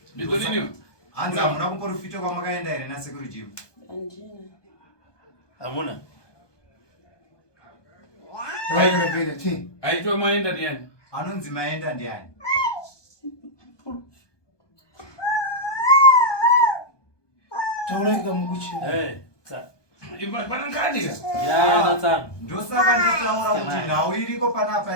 Ndiko nini? Hanzi hamuna kumuprofita kwamakaenda here nasekuru Jimu? Handina. Hamuna? Raikapinda ti. Aitwa maenda ndiani? Anonzi maenda ndiani? Taura ikamukuchi. Pana nkadika? Ndosaka ndataura kuti nhau iriko panapa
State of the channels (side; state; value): right; late; 1.2 ms